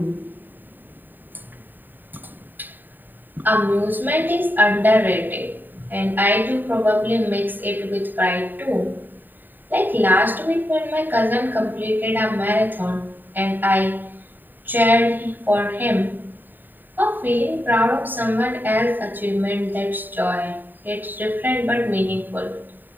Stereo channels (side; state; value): left; late; 0.090 ms